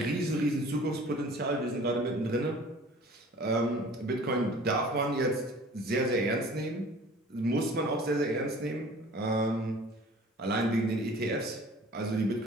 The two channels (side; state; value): both; normal; correlation 0.47